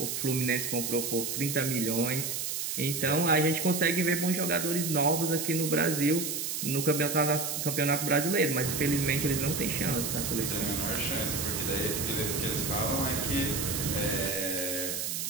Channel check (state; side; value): noise; right; hiss, 2 dB below the sound